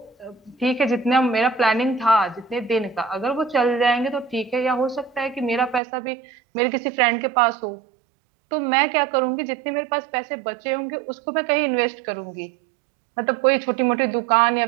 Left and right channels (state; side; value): drops out; left; at 5.8 s